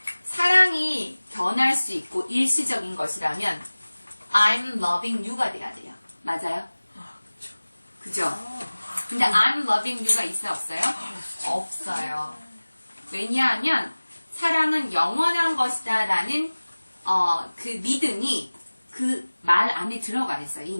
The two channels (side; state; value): both; inverted; correlation -1.00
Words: 사랑이 변할 수 있고 일시적인 것이라면 I'm loving you가 돼야 돼요. 맞아요? 그죠? 근데 I'm loving you가 있어요? 없어요? 없어요. 왜냐하면 사랑은 영원한 것이다 라는 그 믿음이 그 말 안에 들어가 있어요.